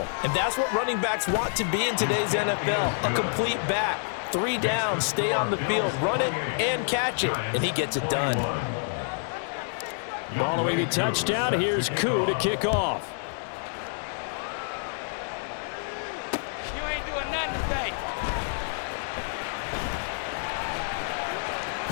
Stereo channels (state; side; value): silent; right; digital silence